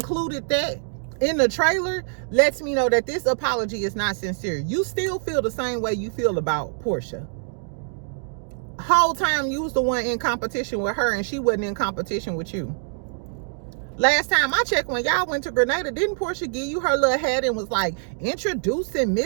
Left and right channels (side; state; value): left; silent; 62 dB below the other